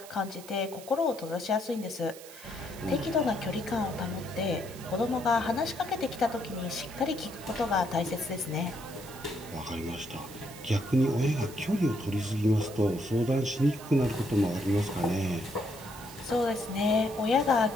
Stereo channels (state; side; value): noise; right; hiss, 17 dB below the sound